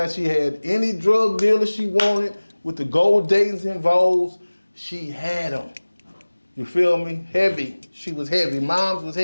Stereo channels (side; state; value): both; inverted; correlation -1.00